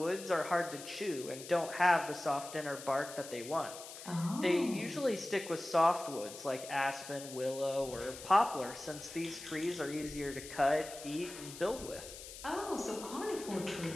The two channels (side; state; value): left; noise; hiss, 13 dB below the sound